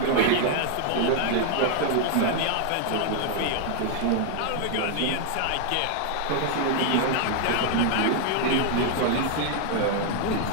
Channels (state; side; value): different; both; correlation 0.00